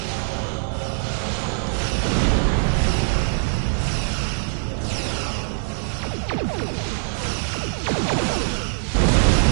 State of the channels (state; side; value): silent; left; 64 dB below the other